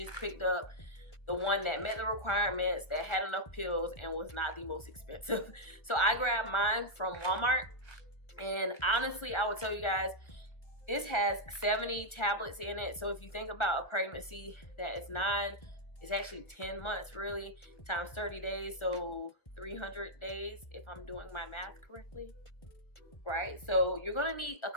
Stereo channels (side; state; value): right; late; 1.4 ms